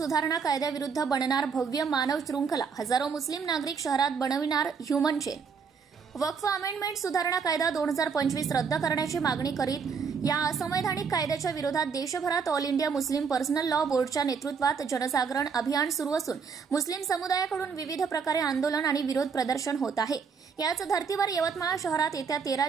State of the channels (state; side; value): quieter; left; 5.8 dB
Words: कायद्याविरुद्ध बनणार भव्य मानव शृंखला, हजारो मुस्लिम नागरिक शहरात बनविणार ह्युमन चेन। वक्फ अमेंडमेंट सुधारणा कायदा 2025 रद्द करण्याची मागणी करीत या असंवैधानिक कायद्याच्या विरोधात देशभरात all India Muslim personal law बोर्डच्या नेतृत्वात जनजागरण अभियान सुरू असून मुस्लिम समुदायाकडून विविध प्रकारे आंदोलन आणि विरोध प्रदर्शन होत आहे। याच धर्तीवर यवतमाळ शहरात येत्या 13